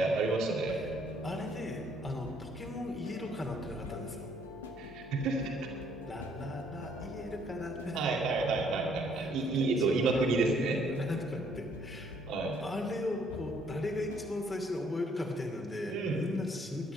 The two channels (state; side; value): normal; both; correlation 0.65